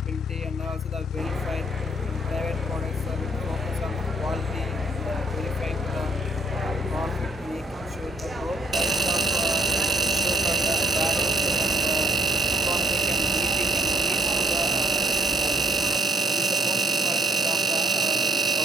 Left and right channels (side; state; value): both; normal; correlation 0.59